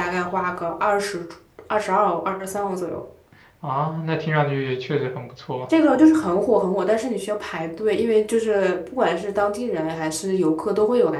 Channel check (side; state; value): both; identical; correlation 1.00